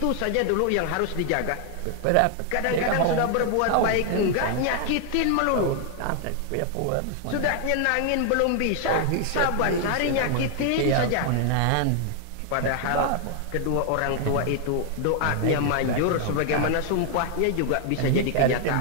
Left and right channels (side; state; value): both; different; correlation 0.00